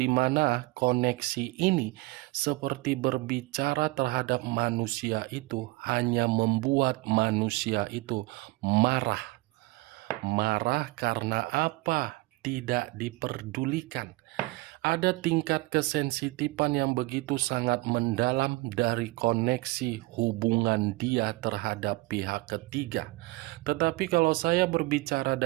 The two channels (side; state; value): left; quieter; 21.8 dB